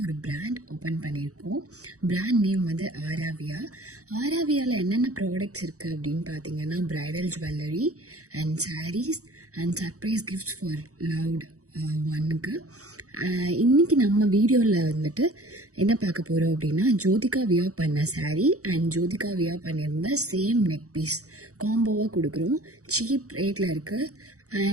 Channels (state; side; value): late; left; 0.65 ms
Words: ஒரு பிராண்ட் ஓப்பன் பண்ணியிருக்கோம். பிராண்ட் நேம் வந்து ஆராவியா. ஆராவியாவில் என்னென்ன ப்ராடக்ட்ஸ் இருக்குது அப்படின்னு பார்த்தீங்கன்னா, bridal jewellery and sarees and surprise gifts for loved ஒன்னுக்கு. இன்றைக்கி நம்ம வீடியோவில் வந்துட்டு என்ன பார்க்க போகிறோம் அப்படின்னா, ஜோதிகா வியர் பண்ண சாரீ அண்ட் ஜோதிகா வியர் பண்ணியிருந்த சேம் நெக் பீஸ் காம்போவாக கொடுக்குறோம். சீப் ரேட்டில் இருக்குது